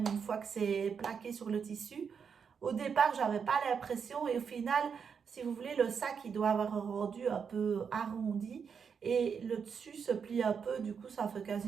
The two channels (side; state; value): left; quieter; 6.5 dB